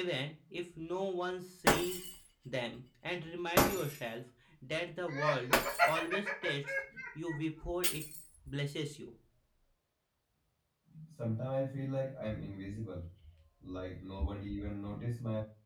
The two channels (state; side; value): identical; both; correlation 1.00